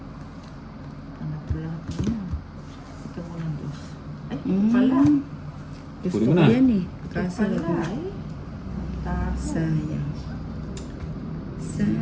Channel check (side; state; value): both; identical; correlation 1.00